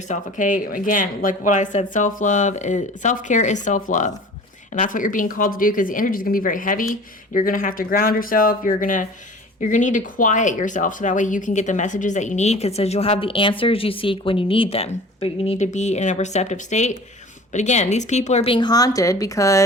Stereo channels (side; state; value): both; normal; correlation 0.43